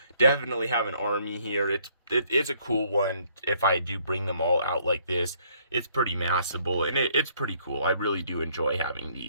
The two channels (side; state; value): both; inverted; correlation -0.65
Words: definitely have an army here. It's a cool one. If I do bring them all out like this, it's pretty massable, and it's pretty cool. I really do enjoy having